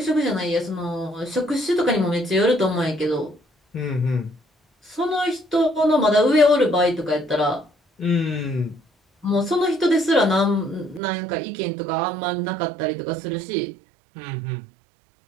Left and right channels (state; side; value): drops out; left; at 11.0 s